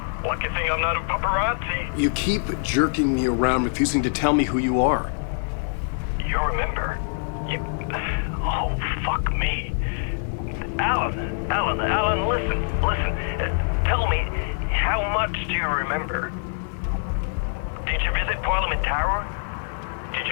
Lucky thing I'm not a paparazzi. You keep jerking me around, refusing to tell me who you are. You remember? You... Oh, fuck me. Alan, listen. Tell me, how much do you remember? Did you visit Parliament Tower? Did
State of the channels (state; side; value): silent; right; digital silence